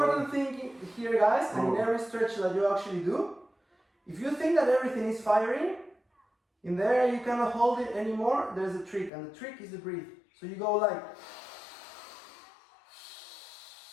thing here, guys, and in every stretch that you actually do, if you think that everything is firing, in there you cannot hold it anymore, there's a trick, and the trick is to breathe. So you go like,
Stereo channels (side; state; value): right; drops out; at 9.1 s